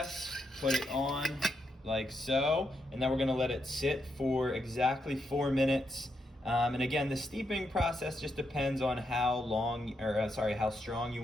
put it on like so, and then we're gonna let it sit for exactly 4 minutes. And again, the steeping process just depends on how strong you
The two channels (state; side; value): normal; both; correlation 0.81